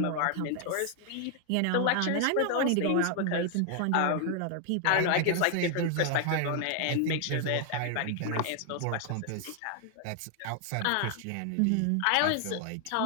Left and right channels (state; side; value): different; both; correlation 0.00